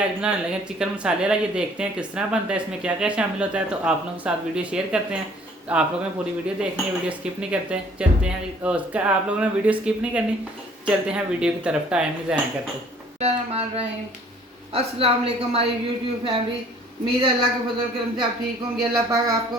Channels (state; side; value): normal; both; correlation 0.56